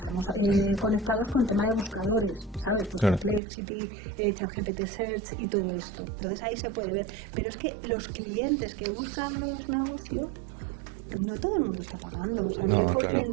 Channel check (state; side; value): drops out; left; at 3.4 s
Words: conectados con tema de buscadores, ¿sabes? Pues Perplexity, ChatGPT Search y todo esto. Entonces ahí se puede ver. Pero es que los clientes que buscan los negocios, no todo el mundo está pagando, o sea, ¿qué